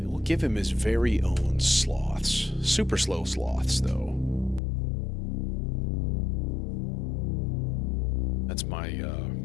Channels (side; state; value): right; drops out; at 4.6 s